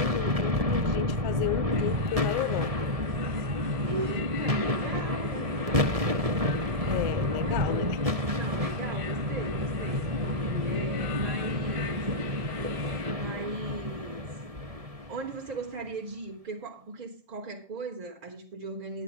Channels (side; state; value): left; late; 1.7 ms